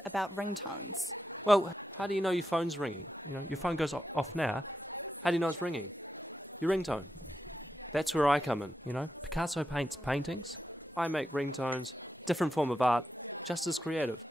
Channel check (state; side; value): normal; both; correlation 0.86